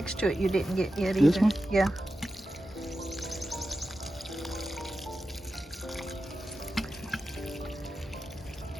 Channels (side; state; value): both; normal; correlation 0.91